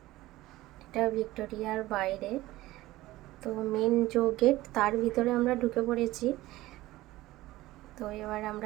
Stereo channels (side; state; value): left; quieter; 17.2 dB